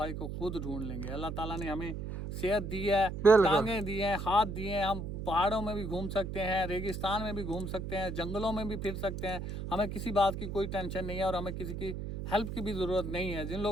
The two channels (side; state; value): right; noise; hum, 6 dB below the sound